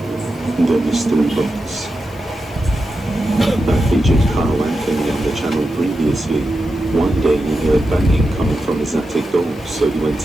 The Mystery Box. That featured Carl Anthony on the channel previously. One day he heard banging coming from his attic door, so he went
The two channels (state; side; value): noise; left; hiss, 27 dB below the sound